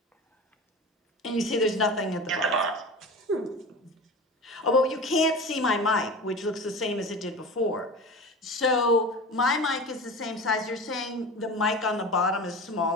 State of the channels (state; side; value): normal; both; correlation 0.32